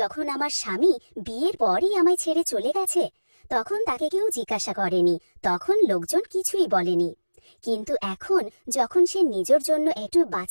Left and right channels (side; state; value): both; inverted; correlation -1.00